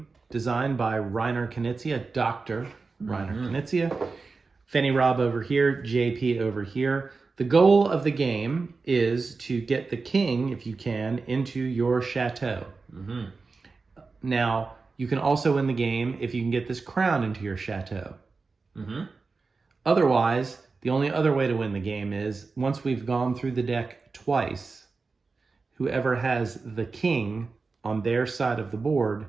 designed by Reiner Knizia, Dr. Reiner Knizia. Fenny Rob over here, JP over here. The goal of the game is to get the king, if you can, into your chateau. Now, you can also win the game if you can get this crown into your chateau. Otherwise, the only other way to win the game is, once we've gone through the deck twice, whoever has the king on their side of the board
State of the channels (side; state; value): left; quieter; 4.2 dB